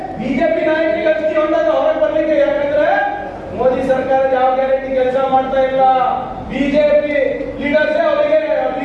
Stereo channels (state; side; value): identical; both; correlation 1.00